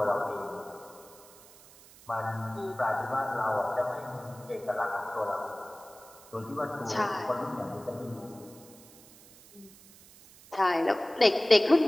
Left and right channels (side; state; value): right; noise; hiss, 22 dB below the sound